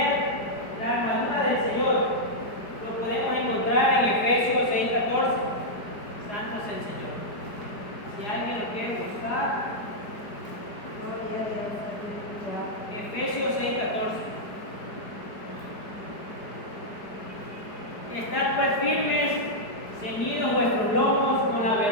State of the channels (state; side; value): late; right; 4.8 ms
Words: la armadura del Señor. Lo podemos encontrar en Efesios 6:14. Santo es el Señor. Si alguien lo quiere buscar, Efesios 6:14. Estad pues firmes, ceñidos vuestros lomos con la